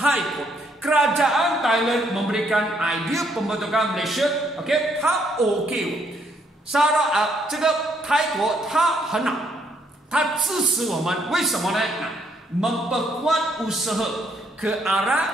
国 Kerajaan Thailand memberikan idea pembentukan Malaysia，OK， 他 OK， 这个泰国他很好，他支持我们，为什么呢？memperkuat usaha ke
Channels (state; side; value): normal; both; correlation 0.71